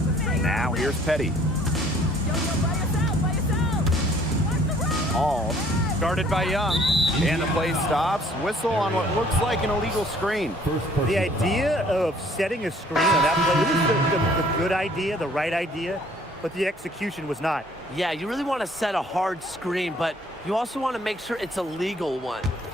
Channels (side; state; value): both; normal; correlation 0.58